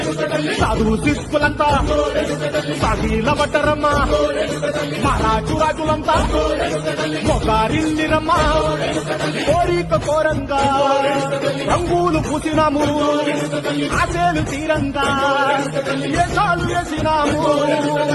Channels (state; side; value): identical; both; correlation 1.00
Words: సాధువు సిక్కులంతా సాగిల పట్టరమ్మా మహారాజు రాజులంతా మొగారిల్లిరమ్మా కోరిక కోరంగా రంగులు పూసినాము ఆశలు తీరంగా ఏసాలు వేసినాము